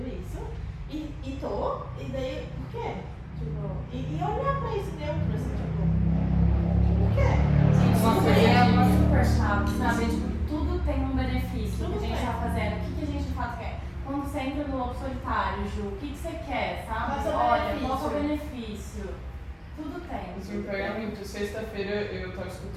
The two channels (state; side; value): identical; both; correlation 1.00